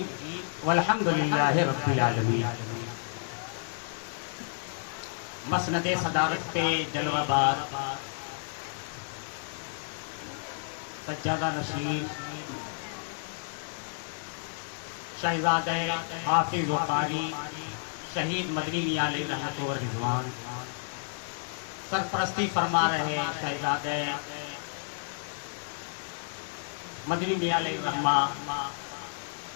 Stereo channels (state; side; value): silent; right; digital silence